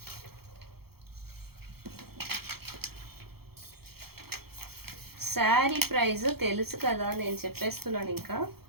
శారీ ప్రైస్ తెలుసు కదా, నేను చెప్పేస్తున్నాను. ఇంకా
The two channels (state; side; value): late; left; 0.95 ms